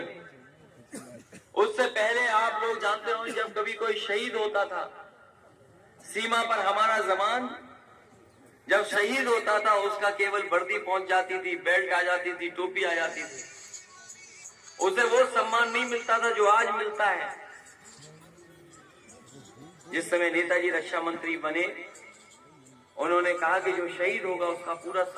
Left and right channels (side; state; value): both; identical; correlation 1.00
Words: उससे पहले आप लोग जानते हो, जब कभी कोई शहीद होता था सीमा पर, हमारा जवान जब शहीद होता था उसका केवल वर्दी पहुंच जाती थी, बेल्ट आ जाती थी, टोपी आ जाती थी, उसे वो सम्मान नहीं मिलता था जो आज मिलता है। जिस समय नेताजी रक्षा मंत्री बने उन्होंने कहा कि जो शहीद होगा उसका पूरा